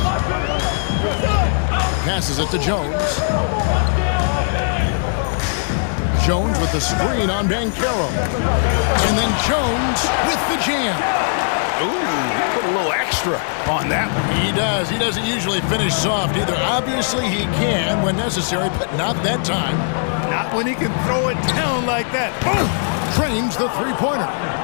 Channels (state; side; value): silent; right; digital silence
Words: Passes it to Jones. Jones with the screen on Banchero. And then Jones with the jam. Ooh, put a little extra on that one. He does. He doesn't usually finish soft either. Obviously, he can when necessary, but not that time. Not when he can throw it down like that. Boom! Trains the three-pointer.